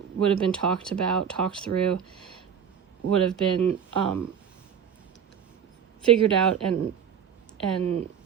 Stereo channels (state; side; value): quieter; left; 8.0 dB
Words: would have been talked about, talked through, would have been figured out and